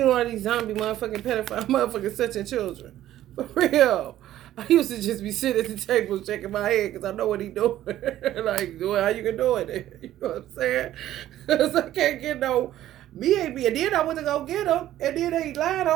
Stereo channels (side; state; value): left; quieter; 13.2 dB